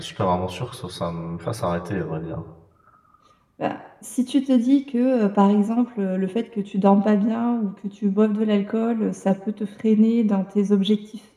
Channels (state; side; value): identical; both; correlation 1.00